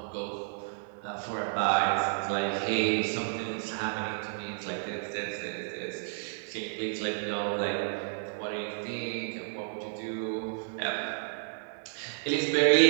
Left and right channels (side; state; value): left; silent; digital silence